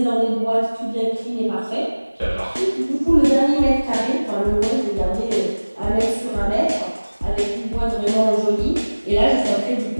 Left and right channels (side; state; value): both; inverted; correlation -1.00